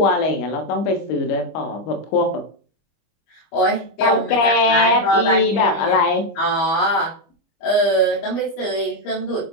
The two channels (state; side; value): late; right; 25 ms